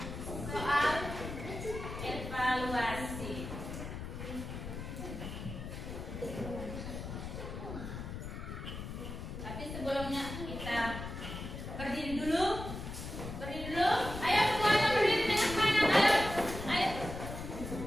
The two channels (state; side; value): noise; left; rumble, 8 dB below the sound